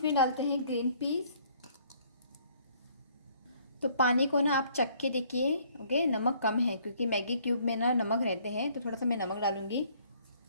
डालते हैं ग्रीन पीस तो पानी को ना आप चख के देखिए ओके नमक कम है क्योंकि मैगी क्यूब में ना नमक रहते हैं तो थोड़ा सा मैं नमक डालूंगी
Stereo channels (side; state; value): both; inverted; correlation -0.61